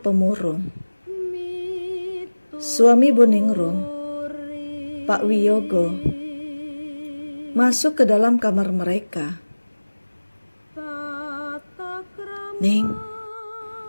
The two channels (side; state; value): both; inverted; correlation -1.00